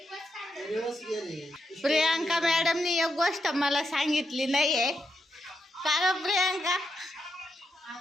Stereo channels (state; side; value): normal; both; correlation 0.83